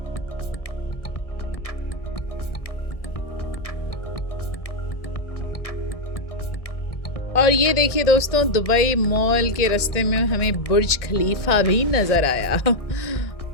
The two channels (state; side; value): late; right; 1.6 ms